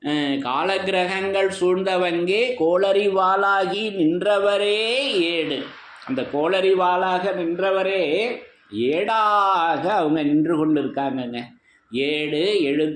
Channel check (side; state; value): both; identical; correlation 1.00